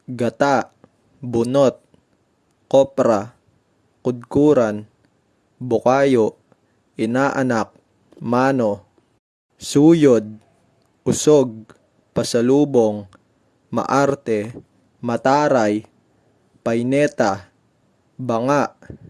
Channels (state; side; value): identical; both; correlation 1.00